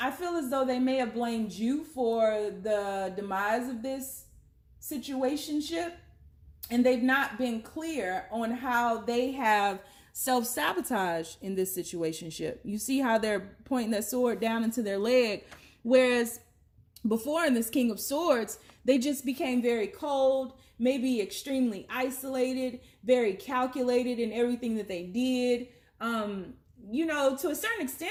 feel as though they may have blamed you for the demise of this situationship, and they've not been clear on how they have self-sabotage in this situationship. You see how they're pointing that sword down into their leg, whereas before in this King of Swords, they just became very cold, maybe extremely isolated, very calculated in everything that they did. To a certain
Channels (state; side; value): identical; both; correlation 1.00